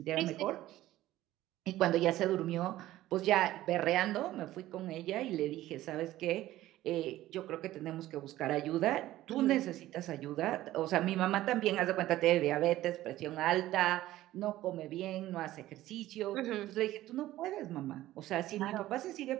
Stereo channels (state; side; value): quieter; left; 15.1 dB